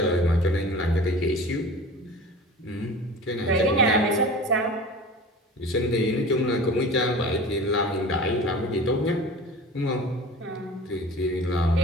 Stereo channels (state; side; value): normal; both; correlation 0.38